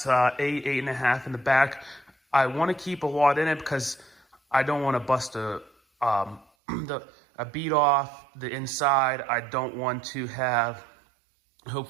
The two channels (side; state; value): left; drops out; at 6.5 s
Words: 8.5 in the back. I want to keep a lot in it because I don't want to bust a bead off the inside. I don't want to have